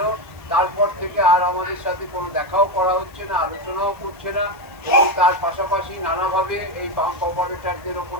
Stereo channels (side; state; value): left; noise; hiss, 29 dB below the sound